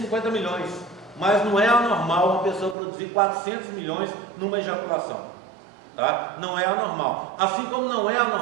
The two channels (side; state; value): left; drops out; at 2.8 s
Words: milhões, mas não é anormal uma pessoa produzir 400 milhões numa ejaculação, tá? Não é anormal, assim como não é